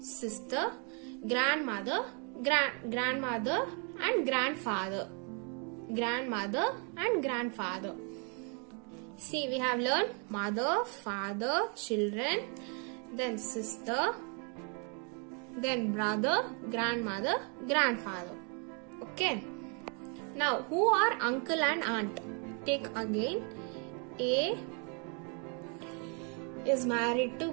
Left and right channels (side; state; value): left; quieter; 37.4 dB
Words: grandmother, grandmother and grandfather. See, we have learned mother, father, children, then sister, then brother, grandmother, grandfather. Okay. Now, who are uncle and aunt? Take again. A is married to